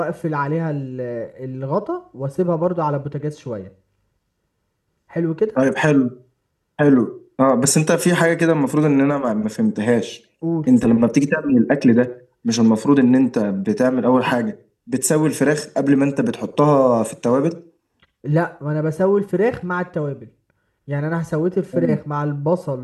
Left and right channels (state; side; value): identical; both; correlation 1.00